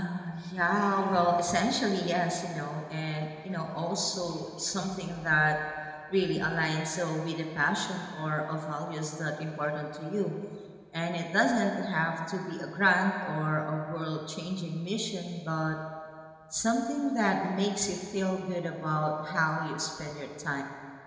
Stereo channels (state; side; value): identical; both; correlation 1.00